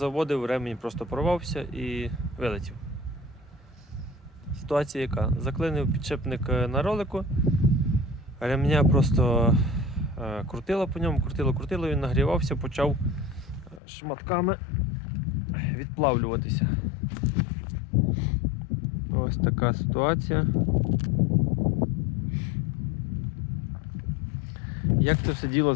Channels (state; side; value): drops out; right; at 13.8 s